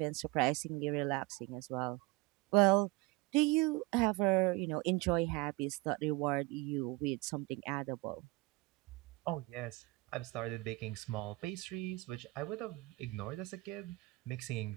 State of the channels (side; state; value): left; quieter; 22.7 dB